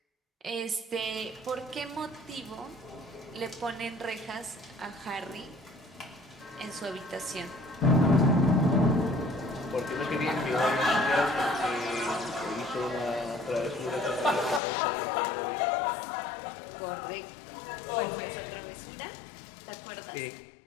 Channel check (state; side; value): drops out; right; at 14.6 s